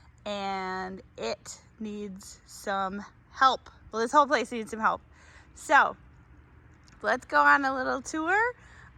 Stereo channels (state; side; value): identical; both; correlation 1.00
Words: and it needs some help. Well, this whole place needs some help. So let's go on a little tour